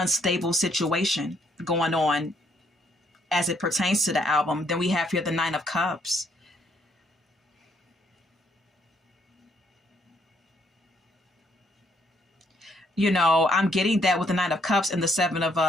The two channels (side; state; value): both; normal; correlation 0.70